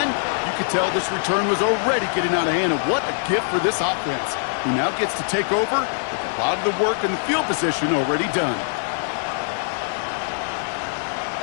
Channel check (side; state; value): right; silent; digital silence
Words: you could tell this return was already getting out of hand. And what a gift for this offense, who now gets to take over with a lot of the work and the field position already done.